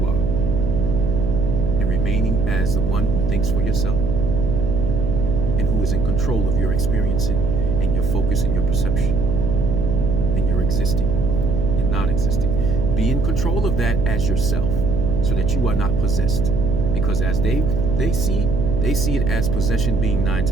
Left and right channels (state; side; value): noise; right; hum, 4 dB below the sound